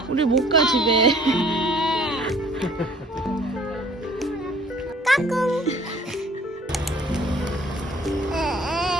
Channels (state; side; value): normal; both; correlation 0.55